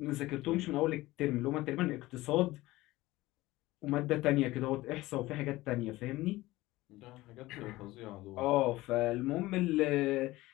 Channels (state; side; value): quieter; right; 18.5 dB